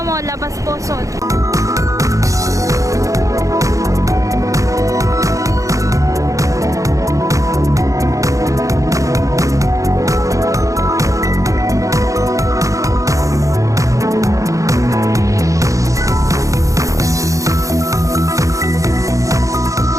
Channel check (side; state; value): left; late; 0.16 ms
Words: mo, labas pusod.